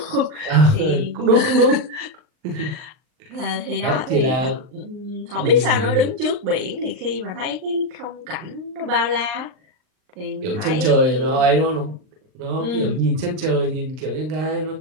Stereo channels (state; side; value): late; left; 39 ms